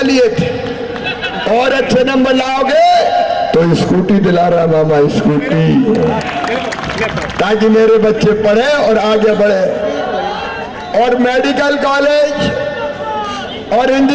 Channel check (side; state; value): both; identical; correlation 1.00